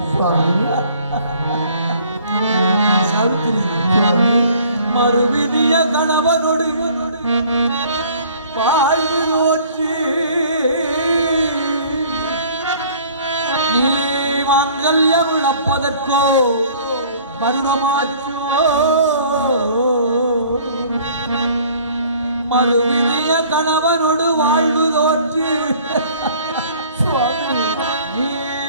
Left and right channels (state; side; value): inverted; both; correlation -0.53